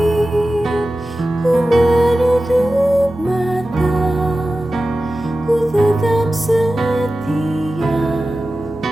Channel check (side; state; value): both; normal; correlation 0.94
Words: Ku menutup mata, ku tetap setia